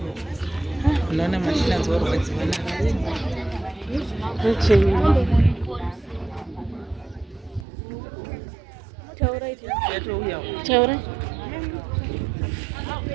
Unaona mashina zao waziona. Taura.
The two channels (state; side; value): drops out; left; at 7.7 s